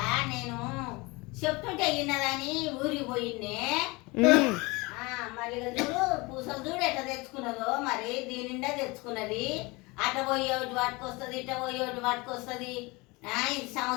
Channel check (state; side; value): quieter; right; 24.8 dB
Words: నేను చెప్తుంటే ఇన్నదని ఊరికి పోయిండే. మరి ఇక చూడు పూసలు చూడు ఎట్లా తెచ్చుకున్నదో, మరి దీని నిండా తెచ్చుకున్నది. అట్ట పోయే ఒకటి పట్టుకొస్తుంది, ఇట్ట పోయే ఒకటి పట్టుకొస్తుంది. ఇది